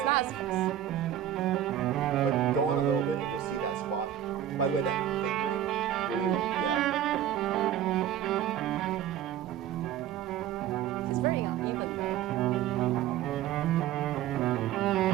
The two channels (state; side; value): quieter; left; 11.1 dB